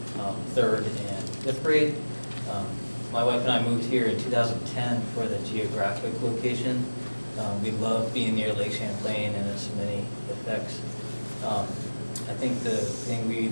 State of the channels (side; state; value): both; inverted; correlation -1.00